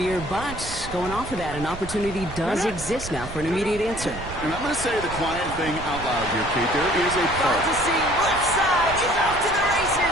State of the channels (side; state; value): right; noise; rumble, 11 dB below the sound